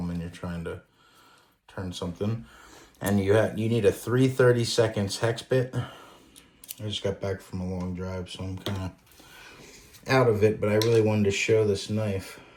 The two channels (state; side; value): identical; both; correlation 1.00